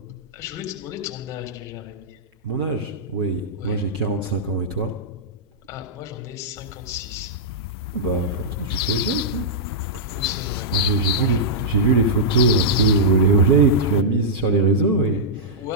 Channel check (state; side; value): normal; both; correlation -0.12